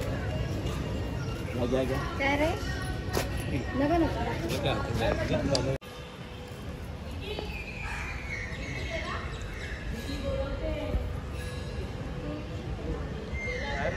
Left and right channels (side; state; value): both; identical; correlation 1.00